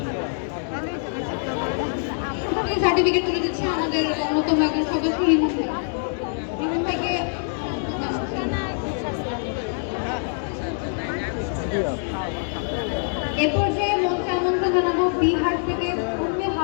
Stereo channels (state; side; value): silent; right; 62 dB below the other